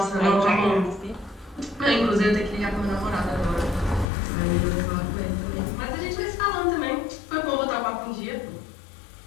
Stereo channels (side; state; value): right; drops out; at 4.0 s